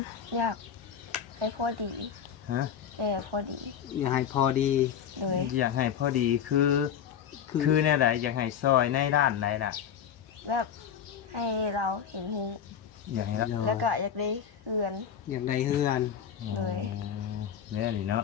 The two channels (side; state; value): right; quieter; 8.4 dB